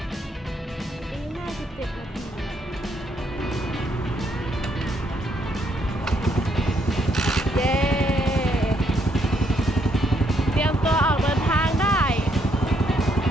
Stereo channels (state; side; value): normal; both; correlation 0.73